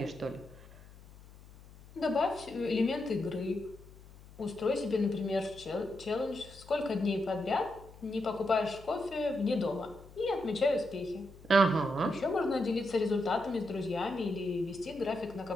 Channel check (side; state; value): left; noise; hum, 20 dB below the sound